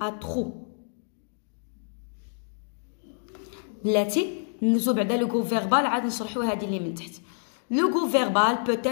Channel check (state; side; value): silent; right; digital silence